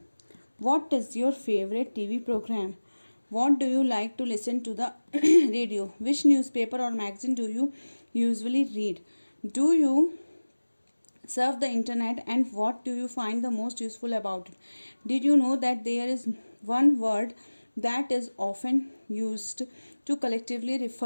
What is your favorite TV program? What do you like to listen to the radio? Which newspaper or magazine do you usually read? Do you surf the internet, and what do you find the most useful about it? Did you know that there is one word that is often used to collectively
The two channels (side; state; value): both; inverted; correlation -1.00